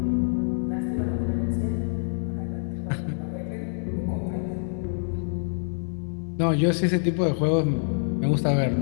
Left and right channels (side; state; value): right; silent; digital silence